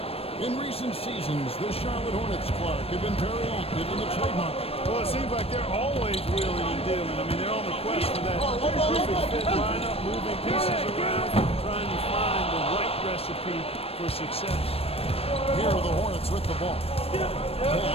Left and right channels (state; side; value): late; right; 0.28 ms